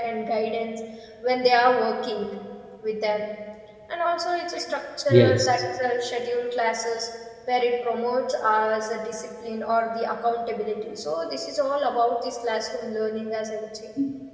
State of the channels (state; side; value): identical; both; correlation 1.00